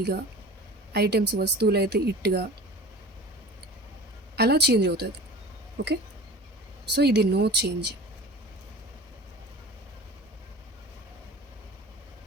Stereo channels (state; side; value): normal; both; correlation 0.39